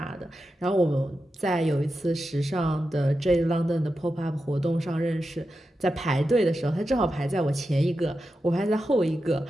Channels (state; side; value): normal; both; correlation 0.90